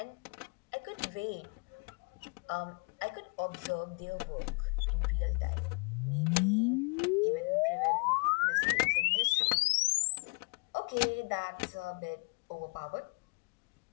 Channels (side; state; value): right; quieter; 31.7 dB